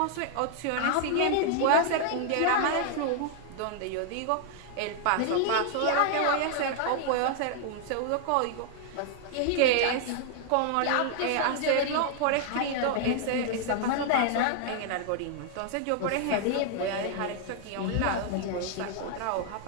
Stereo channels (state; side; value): different; both; correlation 0.00